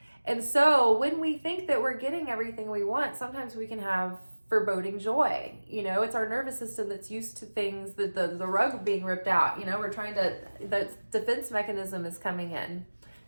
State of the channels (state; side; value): inverted; both; correlation -1.00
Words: And so when we think that we're getting everything we want, sometimes we can have foreboding joy. It's our nervous system that's used to things, the rug being ripped out. The defense mechanism is coming in,